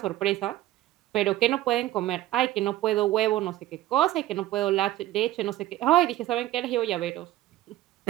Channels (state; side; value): quieter; left; 15.0 dB